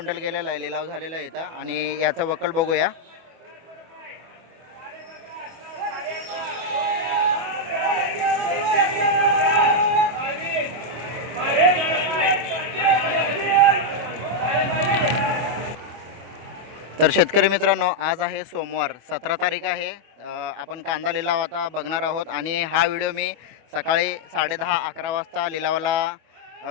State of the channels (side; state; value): left; late; 25 ms